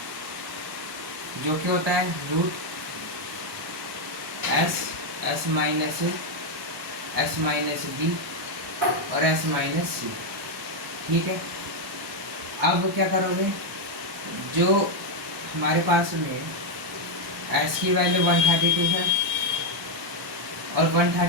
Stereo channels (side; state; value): both; normal; correlation 0.02